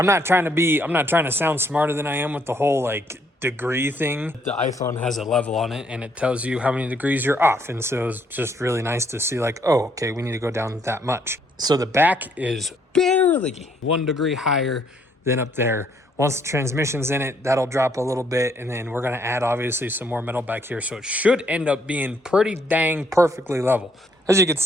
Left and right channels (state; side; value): normal; both; correlation 0.69